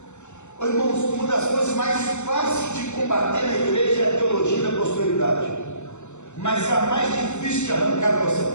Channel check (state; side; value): late; right; 0.83 ms